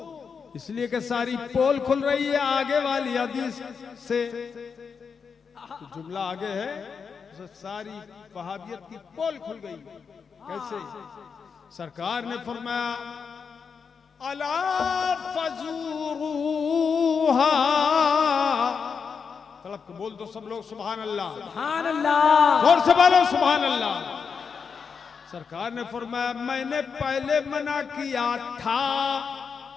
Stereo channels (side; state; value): right; quieter; 5.9 dB